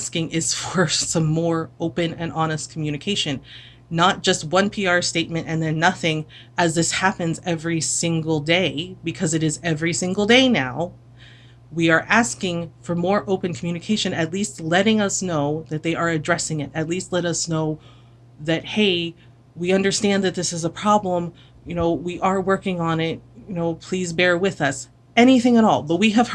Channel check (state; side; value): identical; both; correlation 1.00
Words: is for some more open and honest communication, not just one PR statement and then nothing, as this happens every single day, because it is every single day now. We are asking for more open communication, at least letting us know that they are addressing it. At least let us know that, hey, we understand that this is a problem. We are working on it. Please bear with us. Anything at all. But we have